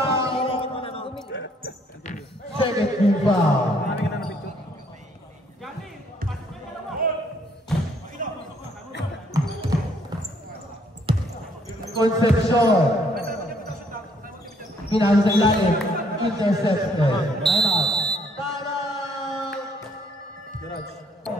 Second team foul. Concepcion. Pinasa sa ilalim. Intercepted. Time out. Garage.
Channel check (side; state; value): both; normal; correlation 0.66